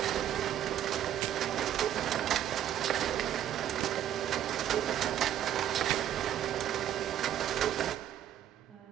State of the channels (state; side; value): quieter; left; 10.9 dB